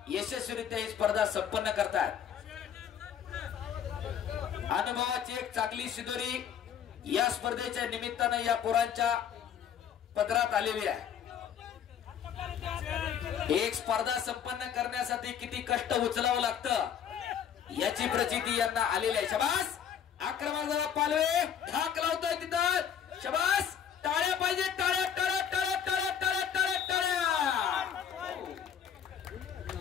यशस्वीरित्या ही स्पर्धा संपन्न करतात। अनुभवाची एक चांगली शिदोरी या स्पर्धेच्या निमित्तानं या पोरांच्या पदरात आलेली आहे। एक स्पर्धा संपन्न करण्यासाठी किती कष्ट उचलावं लागतं याची प्रचिती यांना आलेली आहे। शाबास, आक्रमक जरा पालवे ढाक लावतोय तिथं। शाबास, टाळ्या पाहिजे, टाळ्या टाळ्या टाळ्या टाळ्या टाळ्या टाळ्या टाळ्या।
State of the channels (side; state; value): right; quieter; 8.6 dB